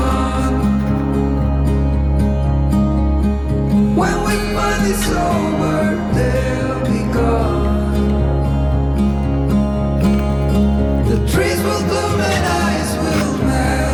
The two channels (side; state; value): both; identical; correlation 1.00